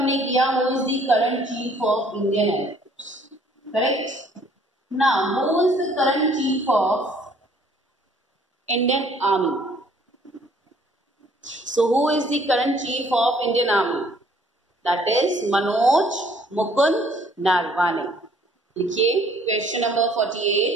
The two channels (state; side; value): normal; both; correlation 0.60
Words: किया who is the current chief of Indian Air Force, correct? Now who is the current chief of Indian Army? So who is the current chief of Indian Army? That is Manoj Mukund Narwane. लिखिए question number